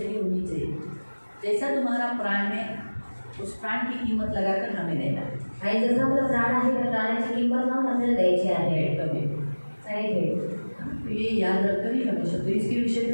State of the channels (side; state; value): both; inverted; correlation -1.00